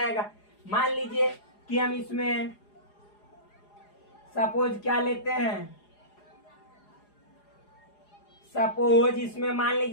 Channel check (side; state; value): right; late; 4.8 ms